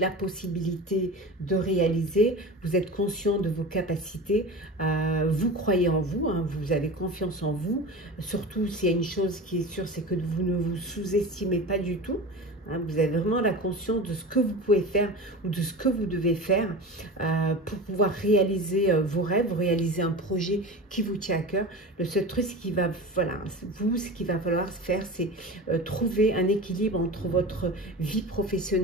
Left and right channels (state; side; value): normal; both; correlation 0.31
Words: possibilité de réaliser, vous êtes conscient de vos capacités, vous croyez en vous, hein, vous avez confiance en vous. Surtout, s'il y a une chose qui est sûre, c'est que vous ne vous sous-estimez pas du tout. Hein, vous avez vraiment la conscience de ce que vous pouvez faire ou de ce que vous devez faire pour pouvoir réaliser vos rêves, réaliser un projet qui vous tient à cœur. Le seul truc, ce qu'il va falloir faire, c'est trouver un équilibre entre votre vie